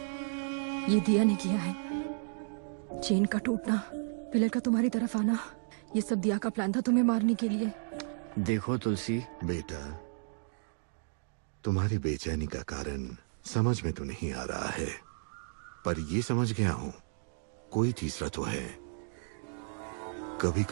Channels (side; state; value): left; silent; digital silence